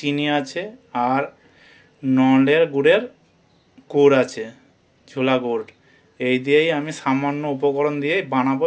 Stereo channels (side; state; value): both; identical; correlation 1.00